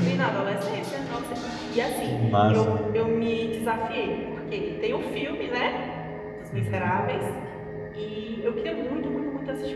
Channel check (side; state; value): both; identical; correlation 1.00